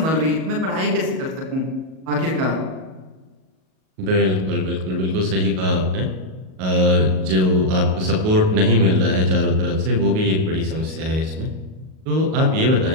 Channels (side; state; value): left; late; 38 ms